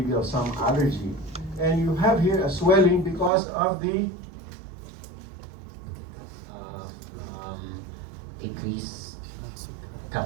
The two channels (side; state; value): left; drops out; at 3.3 s